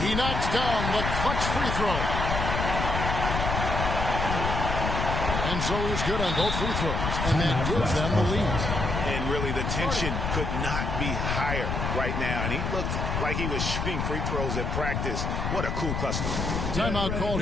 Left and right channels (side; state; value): left; noise; rumble, 1 dB below the sound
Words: He knocks down the clutch free throw. And so he's good on both free throws. And that gives them the lead. And really Really, the tension could not be higher right now, and he looked like he was shooting free throws at practice. What a cool customer. Timeout called